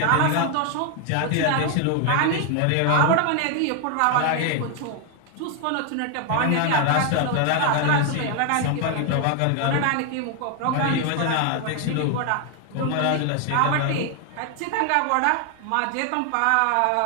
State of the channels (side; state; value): both; different; correlation 0.00